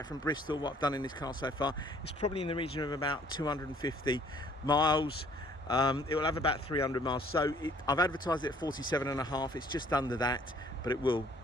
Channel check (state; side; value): normal; both; correlation 0.59